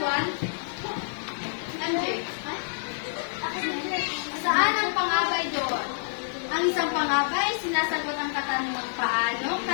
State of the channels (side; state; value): right; silent; digital silence